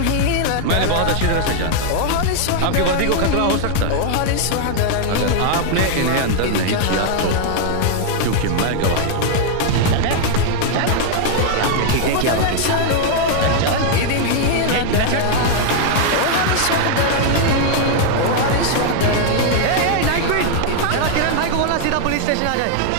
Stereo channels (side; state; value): both; different; correlation 0.00